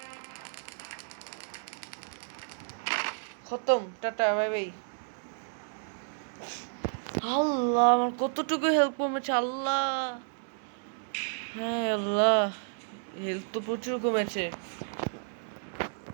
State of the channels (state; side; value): silent; left; 57 dB below the other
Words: খতম, টাটা, বাই বাই। আল্লাহ, আমার কতটুকু হেল্প কমেছে আল্লাহ। হ্যাঁ আল্লাহ, হেল্প তো প্রচুর কমেছে।